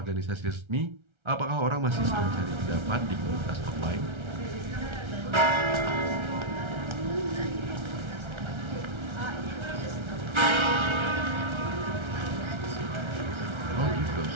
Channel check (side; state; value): left; late; 1.3 ms